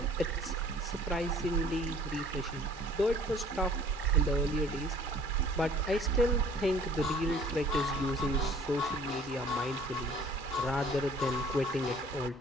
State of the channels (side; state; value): both; normal; correlation 0.53